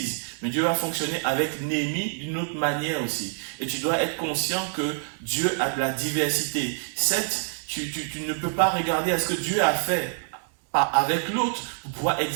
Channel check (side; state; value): left; silent; digital silence